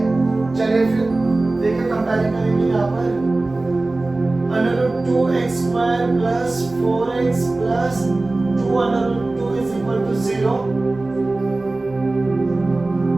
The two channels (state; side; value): quieter; left; 3.1 dB